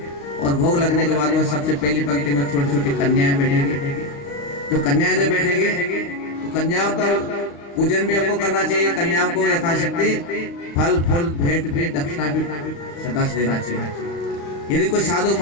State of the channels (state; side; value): late; right; 35 ms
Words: और भोग लगने के बाद वो सबसे पहली पंक्ति में छोटी छोटी कन्याएं बैठेगी। जो कन्याएं जब बैठेगी तो कन्याओं का पूजन भी हमको करना चाहिए। कन्याओं को यथाशक्ति फल फूल भेंट भी दक्षिणा भी सदा से देना चाहिए। यदि कोई साधु